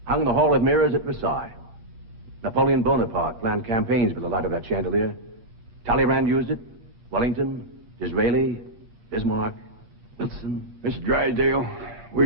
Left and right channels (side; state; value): left; late; 8.7 ms